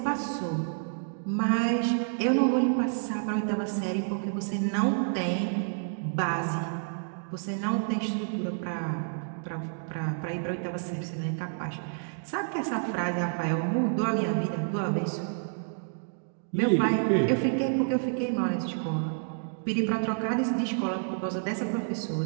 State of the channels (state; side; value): silent; left; digital silence